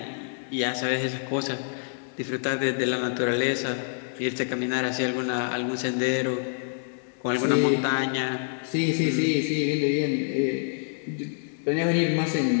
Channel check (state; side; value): silent; right; digital silence